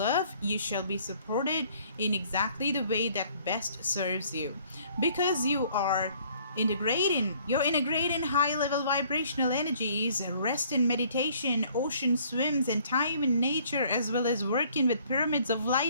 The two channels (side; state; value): both; inverted; correlation -0.59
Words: You shall be supported in exactly the way that best serves you, because you're integrating high level vibrational energies. Rest in meditation, ocean swims, and time in nature, as well as working with pyramids of